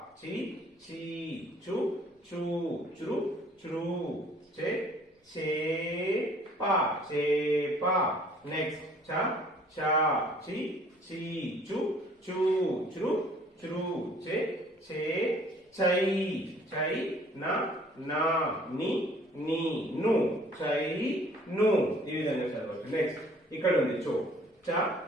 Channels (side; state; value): both; normal; correlation 0.56